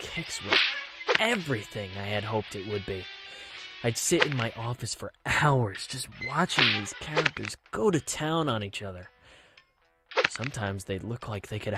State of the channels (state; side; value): identical; both; correlation 1.00